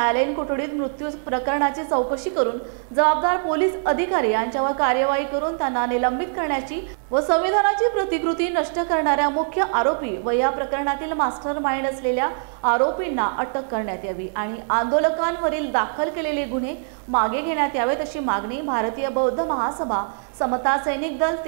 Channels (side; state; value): left; silent; 59 dB below the other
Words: कोठडीत मृत्यू प्रकरणाची चौकशी करून जबाबदार पोलीस अधिकारी यांच्यावर कार्यवाही करून त्यांना निलंबित करण्याची व संविधानाची प्रतिकृती नष्ट करणाऱ्या मुख्य आरोपी व या प्रकरणातील मास्टरमाइंड असलेल्या आरोपींना अटक करण्यात यावी आणि आंदोलकांवरील दाखल केलेले गुन्हे मागे घेण्यात यावेत अशी मागणी भारतीय बौद्ध महासभा समता सैनिक दल